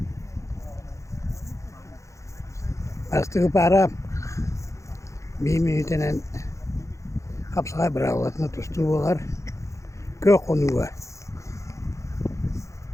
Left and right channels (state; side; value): late; right; 0.15 ms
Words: Astığı para bir minütenen kapsağa bırakılatını tustuğular kök konuğa.